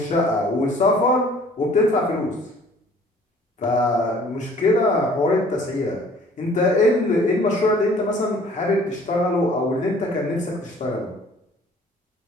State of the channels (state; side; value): normal; both; correlation 0.54